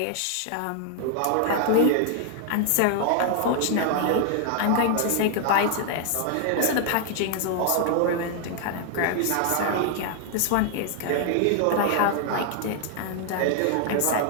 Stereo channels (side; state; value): both; different; correlation 0.00